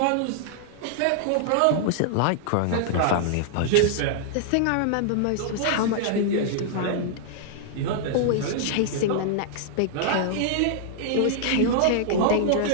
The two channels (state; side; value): different; both; correlation -0.01